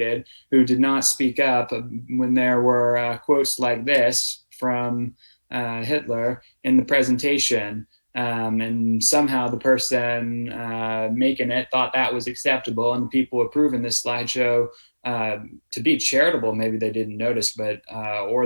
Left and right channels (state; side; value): inverted; both; correlation -1.00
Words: who did not speak up when there were quotes like this from Hitler in the presentation. And somehow the person making it thought that was acceptable, and the people approving this slideshow, to be charitable, maybe they didn't notice, but